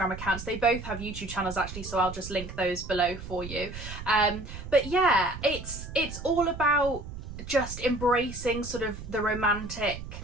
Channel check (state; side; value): noise; right; rumble, 10 dB below the sound